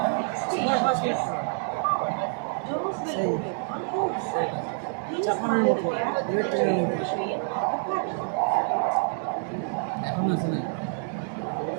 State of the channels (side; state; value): left; silent; 60 dB below the other